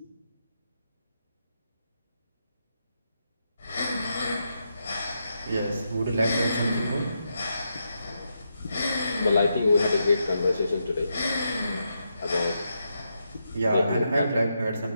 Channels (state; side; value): inverted; both; correlation -0.83